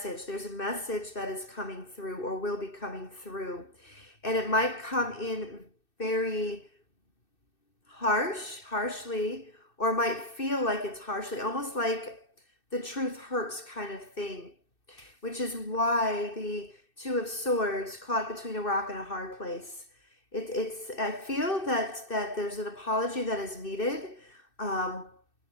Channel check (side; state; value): right; late; 2.6 ms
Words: There's a message that is coming through, or will be coming through. And it might come in very harshly, or might feel like it's harshly, almost like the truth hurts kind of thing, which is why the Two of Swords, caught between a rock and a hard place. I feel that there's an apology that is needed, and